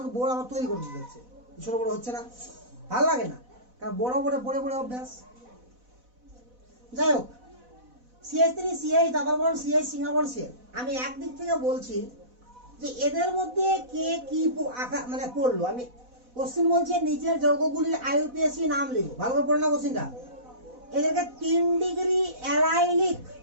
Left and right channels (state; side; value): late; left; 4.1 ms